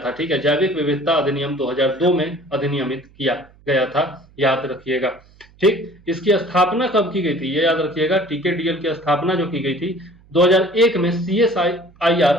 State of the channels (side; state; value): right; noise; hum, 28 dB below the sound